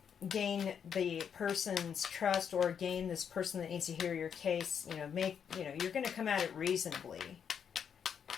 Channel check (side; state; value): right; quieter; 7.7 dB